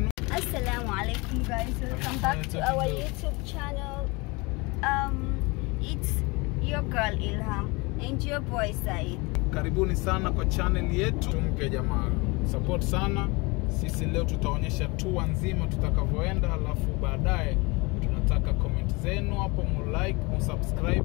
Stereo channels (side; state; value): right; quieter; 26.3 dB